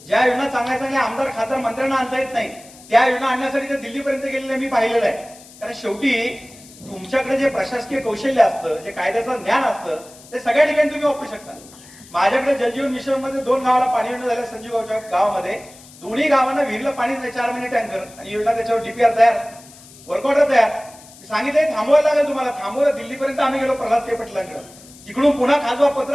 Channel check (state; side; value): noise; left; hiss, 21 dB below the sound